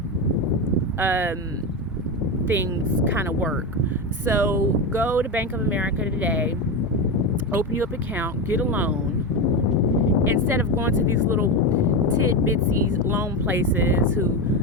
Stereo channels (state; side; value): normal; both; correlation 0.15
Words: things kind of work. So go to Bank of America today, open you up an account, get a loan. Instead of going to these little tidbitsy loan places who